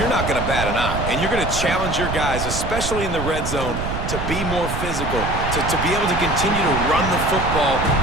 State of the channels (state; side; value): noise; right; rumble, 4 dB below the sound